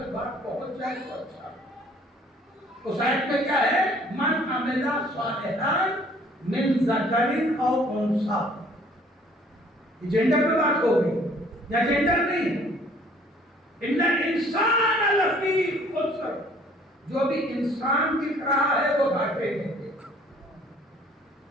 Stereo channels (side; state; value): both; normal; correlation 0.57